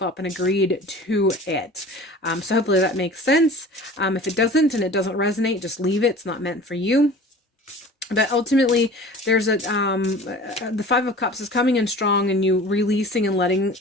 up and agreed to it. So hopefully that makes sense. If it doesn't and it doesn't resonate, just leave it. It's not meant for you. But ultimately, there's the 5 of Cups is coming in strong, and you releasing and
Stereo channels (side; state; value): both; normal; correlation 0.42